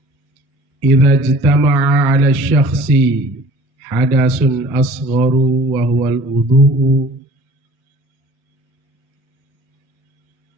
idza ijtama'a 'ala syakhsi hadasun asgharu wa huwa al-wudu'u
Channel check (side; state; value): both; normal; correlation 0.48